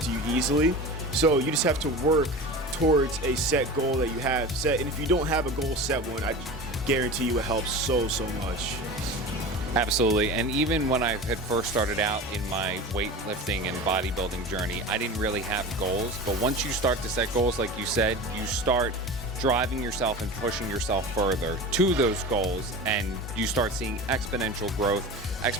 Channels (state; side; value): normal; both; correlation 0.32